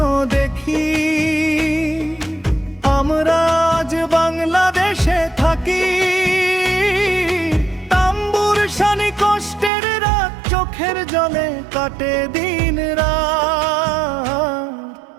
দেখি, আমরা আজ বাংলাদেশে থাকি। তাম্বুর শানি কষ্টের রাত, চোখের জলে কাটে দিন রাত।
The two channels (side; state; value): left; drops out; at 9.7 s